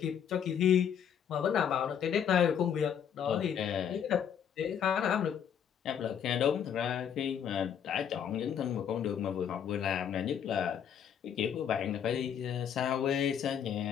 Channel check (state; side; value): quieter; right; 8.5 dB